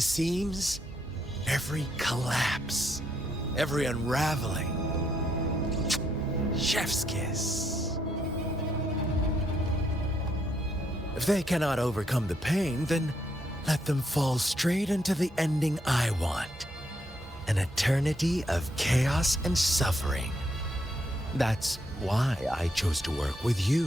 seams. Every collapse, every unraveling. Chef's kiss. If they cannot overcome the pain, then let them fall straight into the ending I want. An eternity of chaos and suffering. That's why I chose to work with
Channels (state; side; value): normal; both; correlation 0.76